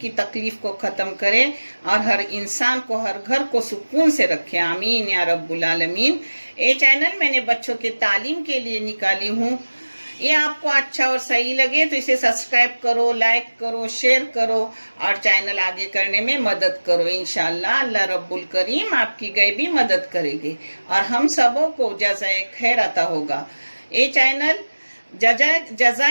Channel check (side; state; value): both; inverted; correlation -1.00